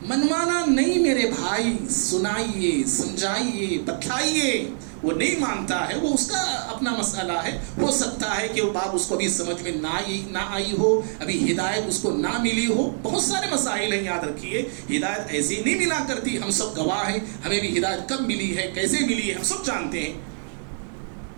منوانا نہیں میرے بھائی سنائیے سمجھائیے بتلائیے. وہ نہیں مانتا ہے وہ اس کا اپنا مسئلہ ہے. ہو سکتا ہے کہ وہ بات اس کو بھی سمجھ میں نہ آئی ہو ابھی ہدایت اس کو نہ ملی ہو. بہت سارے مسائل ہیں یاد رکھیے ہدایت ایسی نہیں ملا کرتی. ہم سب گواہ ہیں ہمیں بھی ہدایت کب ملی ہے کیسے ملی ہے ہم سب جانتے ہیں.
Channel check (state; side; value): silent; left; digital silence